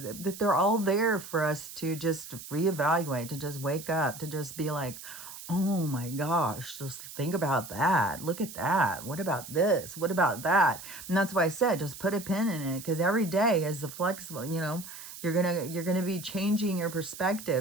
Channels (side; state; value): right; noise; hiss, 13 dB below the sound